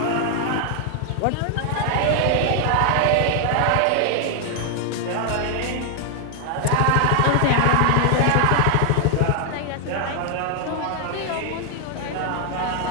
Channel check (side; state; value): both; different; correlation 0.00